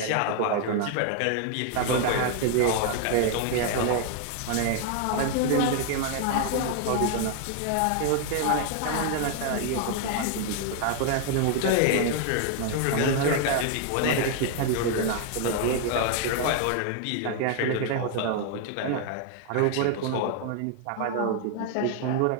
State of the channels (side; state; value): both; different; correlation 0.00